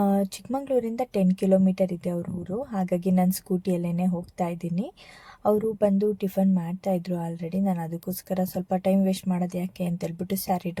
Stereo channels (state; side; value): identical; both; correlation 1.00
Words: ಚಿಕ್ಕಮಂಗ್ಳೂರಿಂದ 10 ಕಿಲೋಮೀಟರ್ ಇದೆ ಅವ್ರ ಊರು, ಹಾಗಾಗಿ ನಾನು ಸ್ಕೂಟಿಯಲ್ಲೇ ಹೋಗ್ತಾ ಇದ್ದೀನಿ. ಅವರು ಬಂದು ಟಿಫನ್ ಮಾಡ್ತಾಯಿದ್ರು ಆಲ್ರೆಡಿ. ನಾನು ಅದಕ್ಕೋಸ್ಕರ ಸ್ವಲ್ಪ ಟೈಮ್ ವೇಸ್ಟ್ ಮಾಡೋದು ಯಾಕೆ ಅಂತೇಳ್ಬಿಟ್ಟು ಸ್ಯಾರಿ